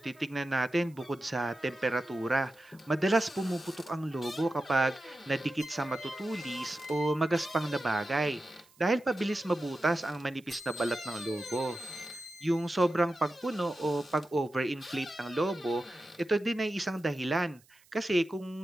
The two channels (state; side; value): noise; right; hiss, 30 dB below the sound